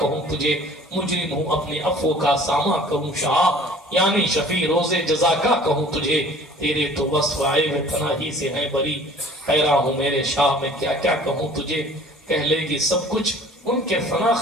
تجھے مجرم ہوں اپنے عفو کا سامہ کہوں شاہ یعنی شفیع روز جزا کا کہوں تجھے تیرے تو وصف آئے وہ تنہی سے ہیں بری حیران ہوں میرے شاہ میں کیا کیا کہوں تجھے کہہ لے گی سب کچھ ان کے ثنا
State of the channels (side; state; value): both; normal; correlation 0.49